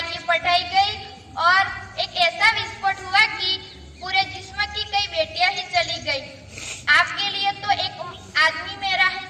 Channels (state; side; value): identical; both; correlation 1.00